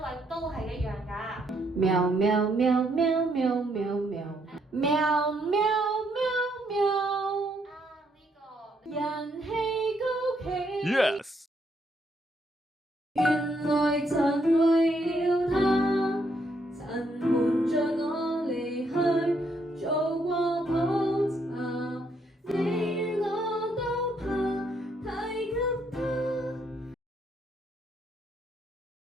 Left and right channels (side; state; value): both; normal; correlation 0.74